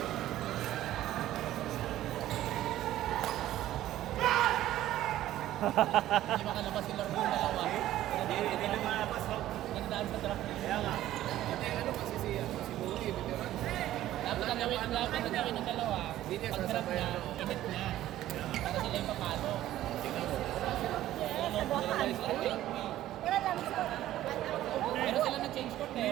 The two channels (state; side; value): quieter; left; 13.8 dB